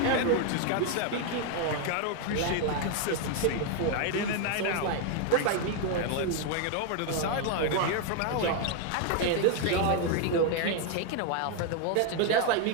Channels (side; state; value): both; different; correlation 0.00